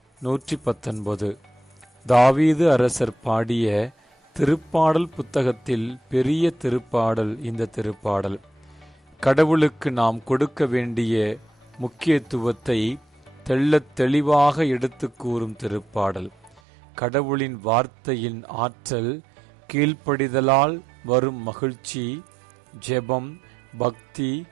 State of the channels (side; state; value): left; drops out; at 16.6 s